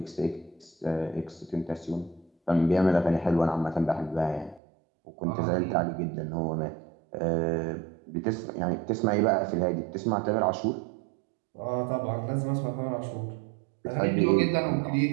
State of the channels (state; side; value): drops out; left; at 4.6 s